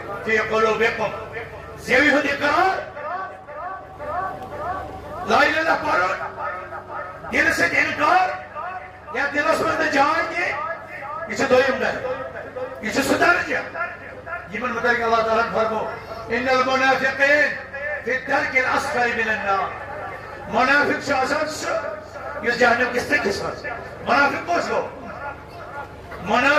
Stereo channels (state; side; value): identical; both; correlation 1.00